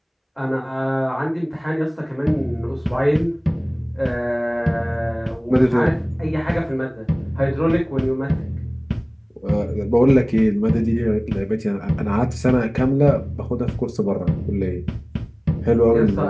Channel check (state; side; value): identical; both; correlation 1.00